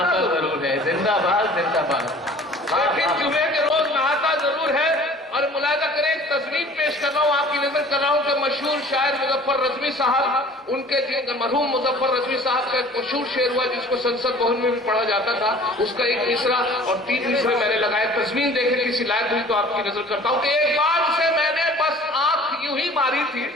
जरूर है। जिंदाबाद जिंदाबाद। लेकिन जुमे के रोज नहाता जरूर है। और मुलाजा करें, एक तस्वीर पेश कर रहा हूं, आपकी नजर कर रहा हूं कि मशहूर शायर मुजफ्फर रजवी साहब, उनके मरहूम मुजफ्फर रजवी साहब का एक मशहूर शेर हुआ जिसको संसद भवन में भी पढ़ा जाता था। उसका एक मिसरा और 3 मिसरे मैंने लगाए। तस्वीर देखे किसी लायक हुई तो आपकी नजर करता हूं कि एक बार उसे मैंने बस आंख यूं ही मारी थी।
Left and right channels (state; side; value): normal; both; correlation 0.48